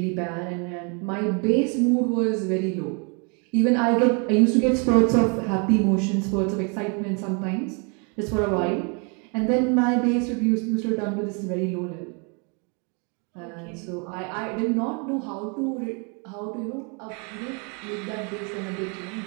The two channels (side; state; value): left; quieter; 35.4 dB